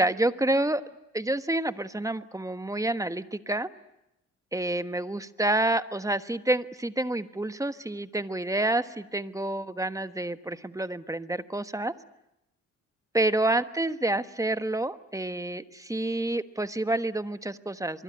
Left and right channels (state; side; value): normal; both; correlation 0.59